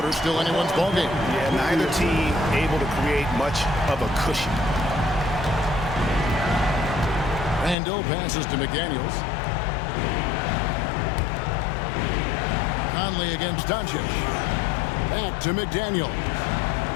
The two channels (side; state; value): right; drops out; at 7.8 s